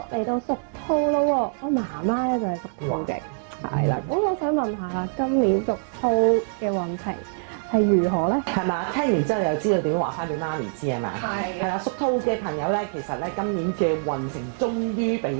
嚟到屬兔咯喎，我媽媽咧就係屬兔嘅，係啦。咁我想問下啦，今年屬兔嘅運程係如何咧？係嘛？聽完之後又知道點樣話翻俾媽咪知啊嘛？係係啦，屬兔嘅朋友咧，其實咧今年嘅運程終於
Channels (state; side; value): silent; left; digital silence